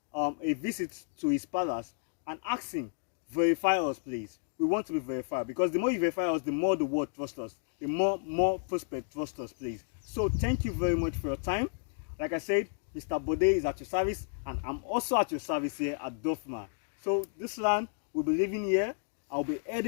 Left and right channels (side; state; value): right; silent; digital silence